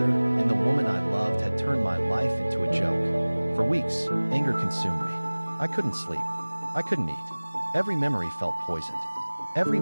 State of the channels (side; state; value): both; inverted; correlation -1.00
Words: and the woman I loved had turned my life into a joke. For weeks, anger consumed me. I couldn't sleep. I couldn't eat. Every memory felt poisoned. Every